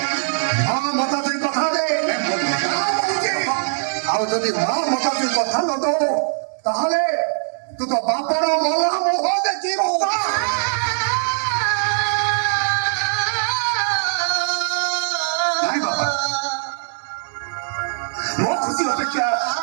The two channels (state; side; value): silent; left; digital silence